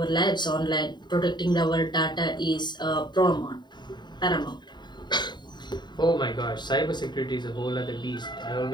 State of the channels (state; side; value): late; right; 0.21 ms